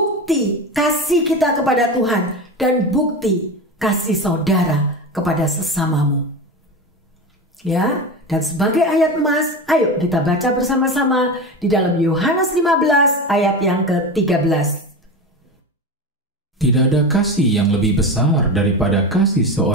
kasih kita kepada Tuhan dan bukti kasih saudara kepada sesamamu? Ya, dan sebagai ayat emas, ayo kita baca bersama-sama di dalam Yohanes 15 ayat yang ke-13. Tidak ada kasih yang lebih besar daripada kasih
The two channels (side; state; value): both; normal; correlation 0.24